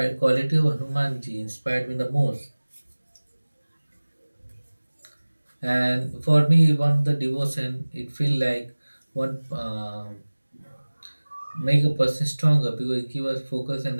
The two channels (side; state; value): both; inverted; correlation -1.00